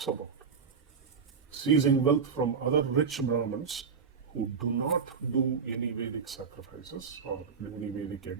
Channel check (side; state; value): left; quieter; 5.9 dB